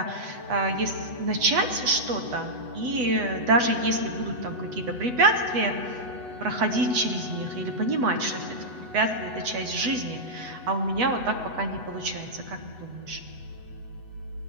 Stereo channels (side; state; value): left; late; 8.1 ms